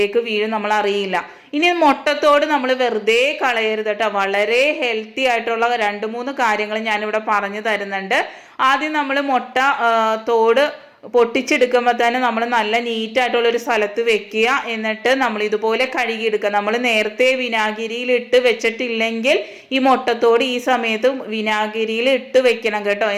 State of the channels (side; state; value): both; identical; correlation 1.00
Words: വീഴും, നമ്മൾ അറിയില്ല. ഇനി മുട്ടത്തോട് നമ്മൾ വെറുതെ കളയരുത് കേട്ടോ. വളരെ ഹെൽത്തി ആയിട്ടുള്ള 2-3 കാര്യങ്ങൾ ഞാനിവിടെ പറഞ്ഞു തരുന്നുണ്ട്. ആദ്യം നമ്മൾ മുട്ട തോട് പൊട്ടിച്ചെടുക്കുമ്പോൾ തന്നെ നമ്മൾ നല്ല നീറ്റായിട്ടുള്ളൊരു സ്ഥലത്ത് വെക്കുക. എന്നിട്ട് നമ്മൾ ഇതുപോലെ കഴുകിയെടുക്കുക. നമ്മൾ നേരത്തെ വിനാഗിരിയിൽ ഇട്ട് വെച്ചിട്ടില്ലെങ്കിൽ ഈ മുട്ടത്തോട് ഈ സമയത്ത് വിനാഗിരിയിൽ ഇട്ട് വെക്കണം കേട്ടോ.